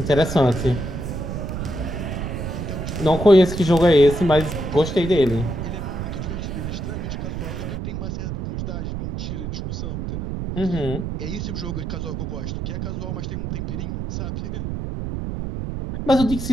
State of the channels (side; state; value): right; noise; rumble, 4 dB below the sound